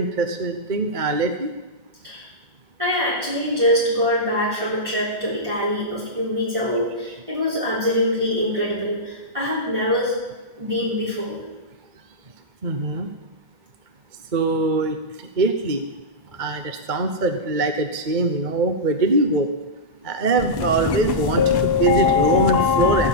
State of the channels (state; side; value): late; left; 1.5 ms